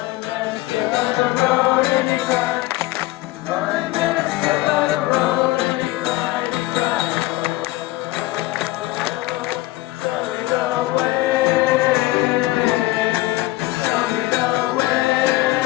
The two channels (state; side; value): quieter; right; 18.8 dB